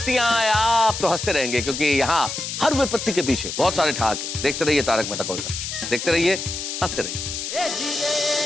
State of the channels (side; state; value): left; noise; hiss, 5 dB below the sound